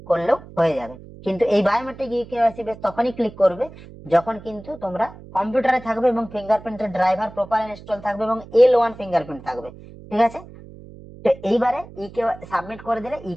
করলেও হয়ে যাবে। কিন্তু এই বায়োমেট্রিক ইকেওয়াইসি বেস তখনই ক্লিক করবে যখন কিন্তু তোমরা কম্পিউটারে থাকবে এবং ফিঙ্গারপ্রিন্টের ড্রাইভার প্রপার ইনস্টল থাকবে এবং L1 ফিঙ্গারপ্রিন্ট থাকবে, ঠিক আছে। তো এইবারে সাবমিট করে দিলে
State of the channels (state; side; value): noise; right; hum, 18 dB below the sound